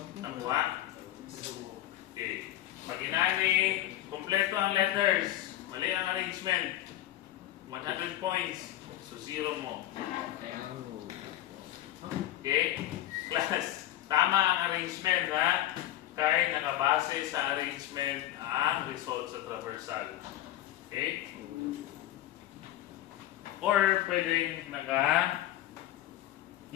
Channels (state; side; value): quieter; right; 13.7 dB